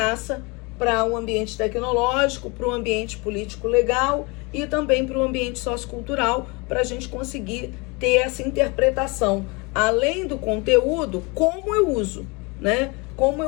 para o ambiente tecnológico, para o ambiente político-legal e também para o ambiente sociocultural, para a gente conseguir ter essa interpretação, além do conteúdo, como eu uso, né? Como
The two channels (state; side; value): quieter; right; 28.0 dB